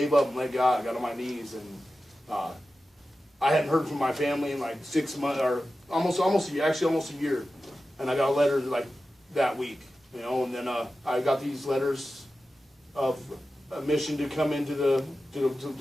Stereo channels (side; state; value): both; normal; correlation 0.93